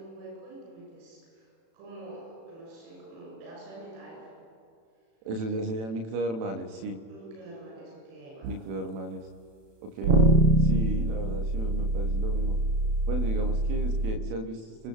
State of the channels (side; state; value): left; late; 36 ms